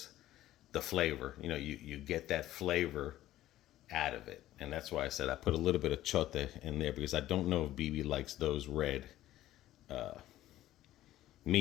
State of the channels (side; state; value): right; quieter; 14.3 dB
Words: the flavor. You know, you get that flavor out of it. And that's why I said I put a little bit of chote in there, because I don't know if BB likes those red.